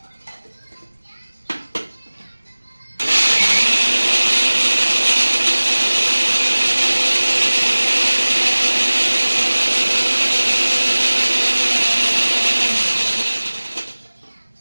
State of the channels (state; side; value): inverted; both; correlation -1.00